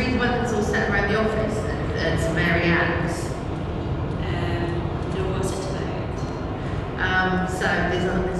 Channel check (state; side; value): identical; both; correlation 1.00